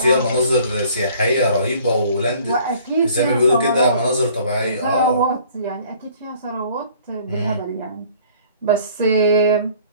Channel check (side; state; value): both; inverted; correlation -0.54